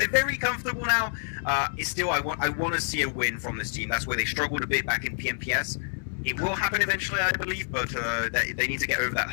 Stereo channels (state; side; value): silent; right; digital silence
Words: very comfortable now. It's still, I want to see a win from this team. That's where they struggled a bit back in PMPS. It will happen eventually, I believe, but they need to get over that